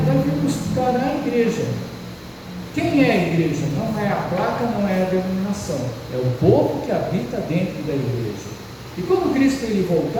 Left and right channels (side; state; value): both; identical; correlation 1.00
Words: vai vir buscar a igreja. Quem é a igreja? Não é a placa, não é a denominação, é o povo que habita dentro da igreja. E quando Cristo ele